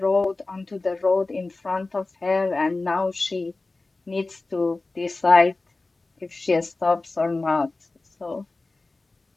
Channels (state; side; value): quieter; right; 3.3 dB